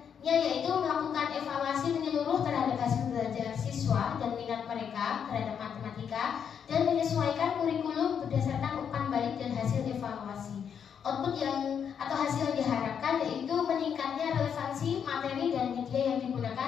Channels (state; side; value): quieter; right; 7.7 dB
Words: yaitu melakukan evaluasi menyeluruh terhadap hasil belajar siswa dan minat mereka terhadap matematika dan menyesuaikan kurikulum berdasarkan umpan balik dan hasil evaluasi. Output atau hasil yang diharapkan yaitu meningkatnya relevansi materi dan media yang